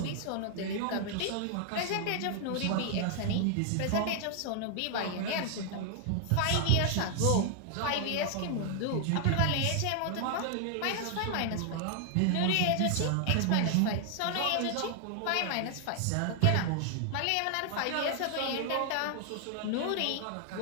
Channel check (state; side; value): different; both; correlation 0.00